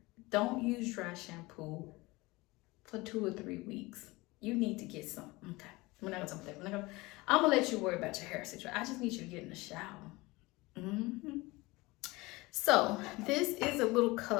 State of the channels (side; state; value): right; quieter; 22.2 dB